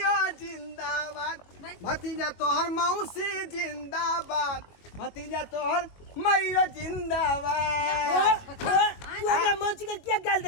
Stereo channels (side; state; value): right; late; 21 ms